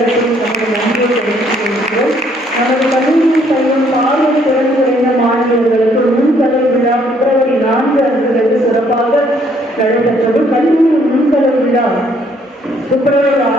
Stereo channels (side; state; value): both; normal; correlation 0.66